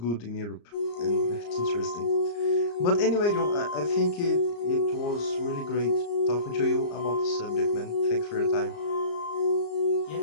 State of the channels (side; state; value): right; late; 34 ms